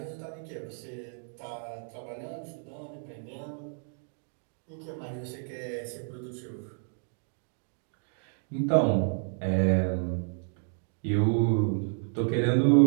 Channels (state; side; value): silent; left; 56 dB below the other